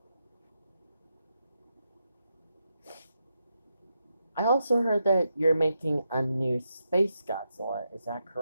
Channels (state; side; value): inverted; both; correlation -0.85